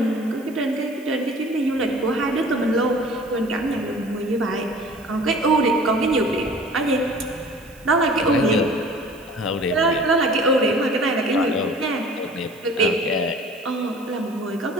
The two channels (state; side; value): noise; right; hiss, 26 dB below the sound